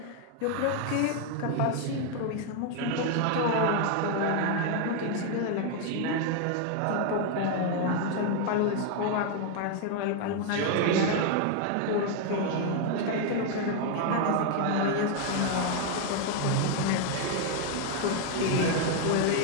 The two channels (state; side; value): different; both; correlation 0.01